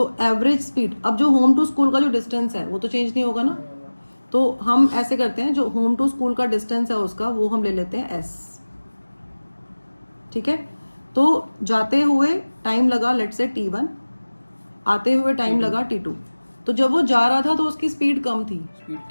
एवरेज स्पीड, अब जो होम टू स्कूल का जो डिस्टेंस है वो तो चेंज नहीं होगा ना, तो हम ऐसे करते हैं, जो होम टू स्कूल का डिस्टेंस है उसका वो हम ले लेते हैं s, ठीक है। तो जाते हुए टाइम लगा लेट से t1, आते हुए टाइम लगा t2। तो जब वो जा रहा था तो उसकी स्पीड कम थी,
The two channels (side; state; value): both; inverted; correlation -1.00